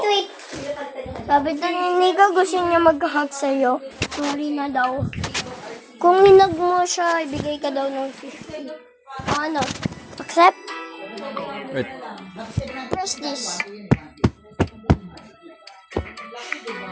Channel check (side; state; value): both; identical; correlation 1.00